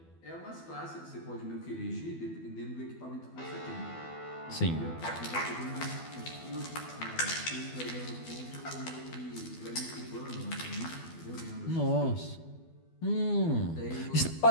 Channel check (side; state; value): right; late; 12 ms